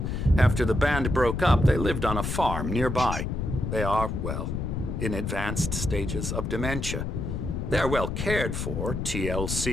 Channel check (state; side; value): noise; left; rumble, 3 dB below the sound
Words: After the band broke up, they lived on a farm nearby. They are, well, in advanced stages of dementia. They're well cared for,